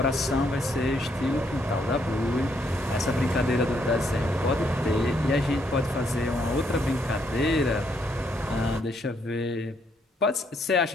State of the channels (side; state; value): both; normal; correlation 0.73